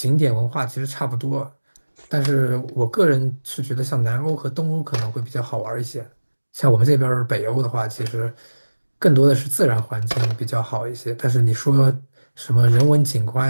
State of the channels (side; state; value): both; inverted; correlation -1.00